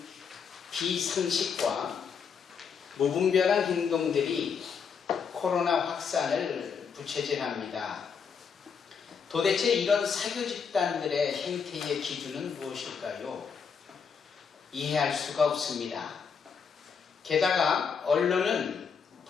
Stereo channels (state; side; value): quieter; right; 6.3 dB